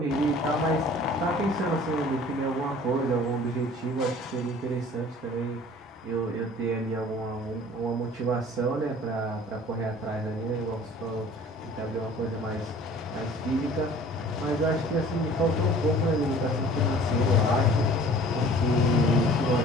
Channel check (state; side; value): normal; both; correlation 0.48